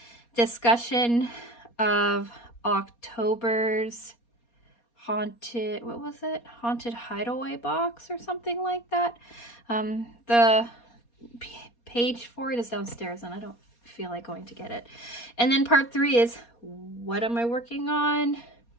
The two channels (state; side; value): late; right; 4.2 ms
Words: discussion of October's haunted, what was it? Haunted hideaway box or something like that. The page for it is downstairs and I don't feel like going to get it. And then part three is, what am I working on